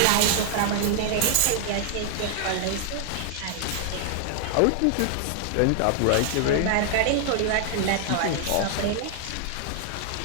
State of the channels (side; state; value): both; different; correlation 0.00